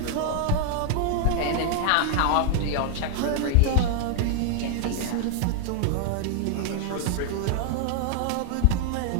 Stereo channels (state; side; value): different; both; correlation 0.00